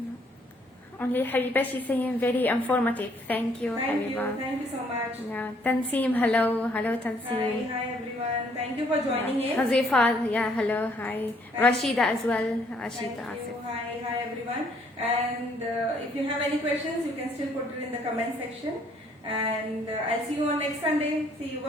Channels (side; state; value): both; normal; correlation 0.65